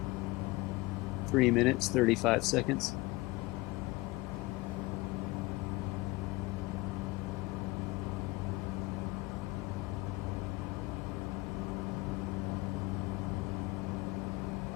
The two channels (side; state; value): right; quieter; 22.2 dB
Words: 3 minutes, 35 seconds.